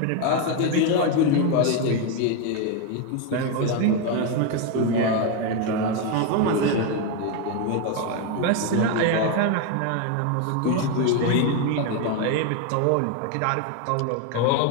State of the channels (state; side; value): different; both; correlation 0.02